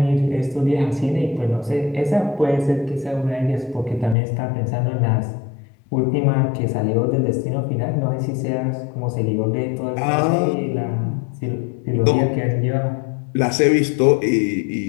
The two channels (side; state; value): right; drops out; at 4.2 s